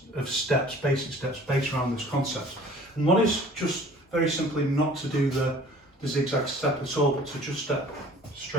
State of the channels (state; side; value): normal; both; correlation 0.50